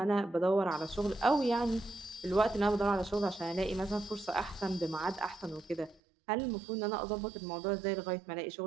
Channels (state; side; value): drops out; left; at 6.0 s